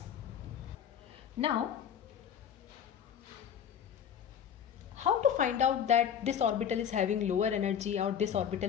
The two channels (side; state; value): right; quieter; 8.5 dB